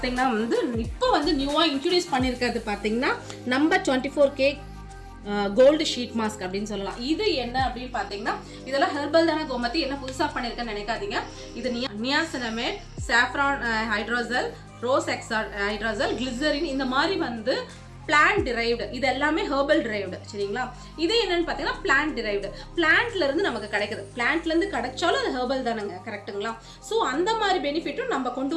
வந்து இப்போ வந்து நியூவாக இன்ட்ரடியூஸ் பண்ணியிருக்கிறது பார்த்தீங்கன்னா நம்ம 24K கோல்டு ஷீட் மாஸ்க் அப்படின்னு சொல்லலாம். இது என்ன அப்படின்னு பார்த்தீங்கன்னா இதெல்லாம் ஹெர்பல் தானே கோமதி, என்ன புதுசாக பண்ணியிருக்கேன்னு நினைக்காதீங்க. இது நியாசினமேட், சாஃப்ரான் ஹைட்ரோசல், ரோஸ் எக்ஸால் ஹைட்ரோசல், கிளிசரின், இந்த மாதிரி வந்து பிளான்ட் டிரைவ்டு, இது எல்லாமே ஹெர்பல் டிரைவ்டு. சரிங்களா? இது என்னன்னு பார்த்தீங்கன்னா பிளான்ட் டிரைவ்டு, பிளான்ட்லேருந்து நமக்கு கிடைக்குது. பிளான்ட்லேருந்து கிடைச்சாலும் அது ஹெர்பல் தானேங்க, கரெக்டுங்களா? ஸோ அந்த மாதிரி பெனிஃபிட்டும் நம்ம கொண்டு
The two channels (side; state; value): both; identical; correlation 1.00